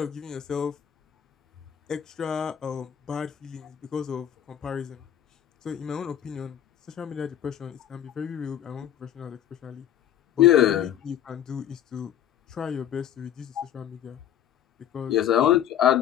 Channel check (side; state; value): right; quieter; 10.6 dB